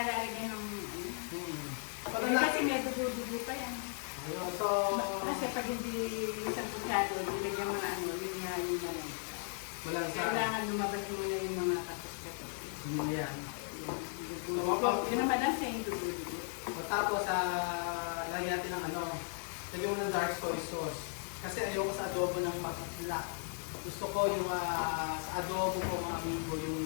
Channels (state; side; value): silent; right; 53 dB below the other